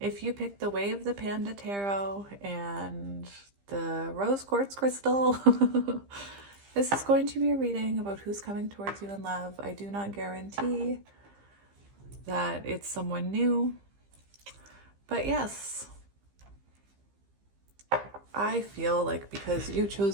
you picked the Way of the Panda Tarot and the Rose Quartz Crystal, This is going to be a reading about who's coming towards you in love. I do not guarantee that it's someone new, but yes, I feel like because you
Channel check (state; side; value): late; left; 15 ms